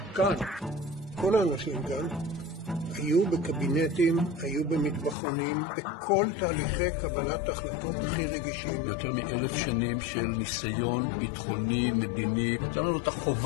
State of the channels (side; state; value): right; drops out; at 5.2 s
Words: כאן. כל האנשים כאן היו בקבינטים, היו במטבחונים, בכל תהליכי קבלת החלטות הכי רגישים. יותר מ1,000 שנים של ניסיון ביטחוני, מדיני. יש לנו את